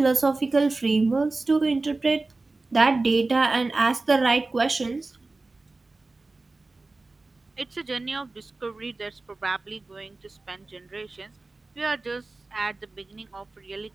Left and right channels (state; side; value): quieter; left; 3.4 dB